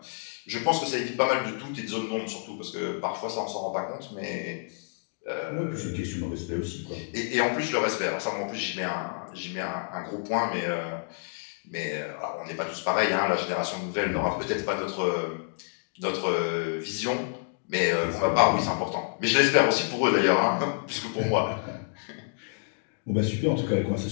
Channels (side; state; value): right; silent; digital silence